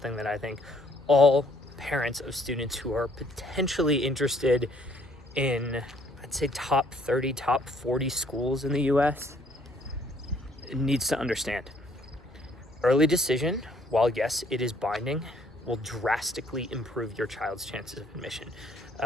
that I think all parents of students who are potentially interested in, I'd say, top 30, top 40 schools in the US needs to understand. Early decision, while yes, it is binding, will drastically improve your child's chances of admission.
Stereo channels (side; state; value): both; normal; correlation 0.64